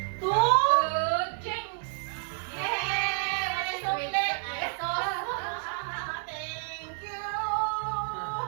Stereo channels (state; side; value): silent; left; 58 dB below the other